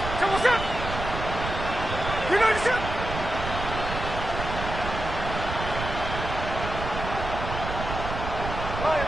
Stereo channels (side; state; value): right; noise; rumble, 6 dB below the sound